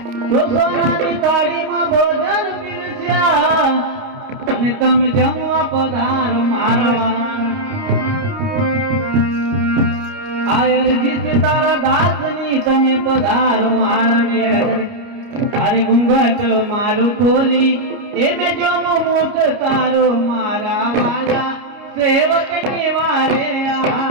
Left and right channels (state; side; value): late; left; 29 ms